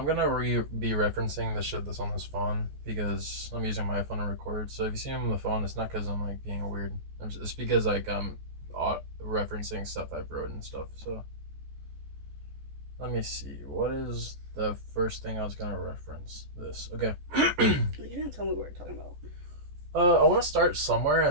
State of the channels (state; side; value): late; left; 14 ms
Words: gonna be referencing the shit that's on this phone because I'm using my phone to record. So if you see me on the phone, it's not because I'm like being weird. It's because like I'm referencing stuff I've wrote and stuff. So let me see. What is the first thing I was gonna reference? This. Okay. know. You didn't tell me what we're talking about. I want to start somewhere